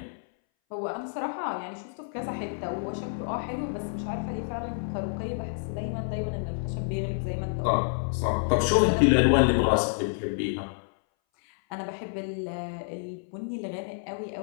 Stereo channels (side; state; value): right; silent; 59 dB below the other